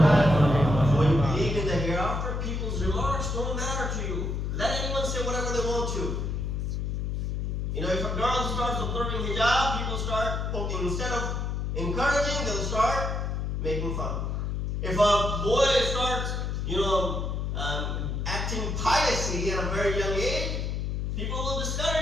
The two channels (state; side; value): noise; left; hum, 1 dB below the sound